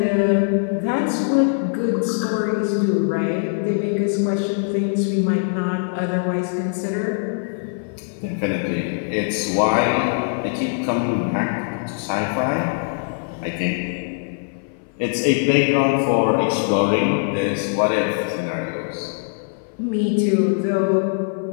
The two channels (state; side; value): silent; right; 57 dB below the other